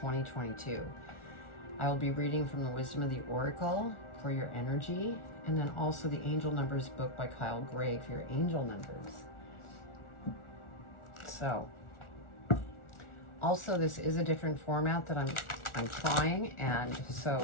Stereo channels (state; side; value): late; right; 1.4 ms